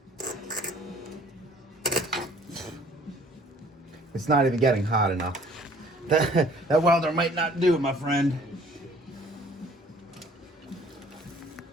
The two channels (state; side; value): normal; both; correlation 0.55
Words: It's not even getting hot enough. That welder might not do it, my friend.